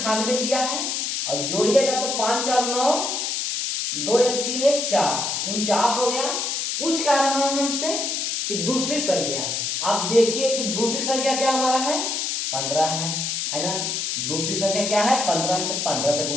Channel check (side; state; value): left; noise; hiss, 1 dB below the sound